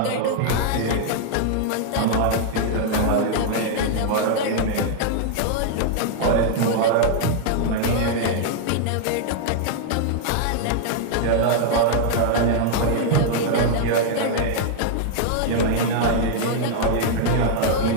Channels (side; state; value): both; different; correlation -0.01